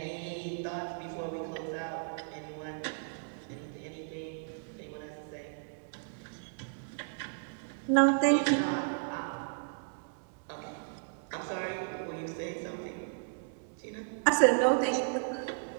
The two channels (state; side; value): silent; left; digital silence